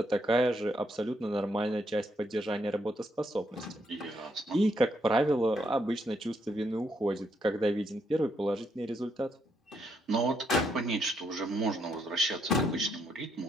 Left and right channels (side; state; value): both; normal; correlation 0.76